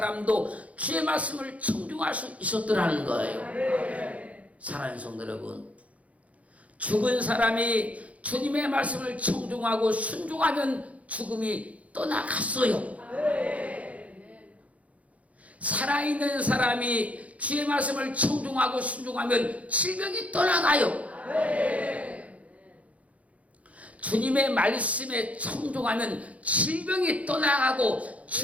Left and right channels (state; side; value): late; left; 0.066 ms